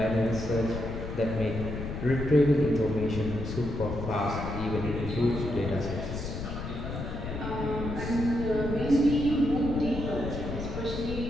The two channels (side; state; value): left; noise; rumble, 6 dB below the sound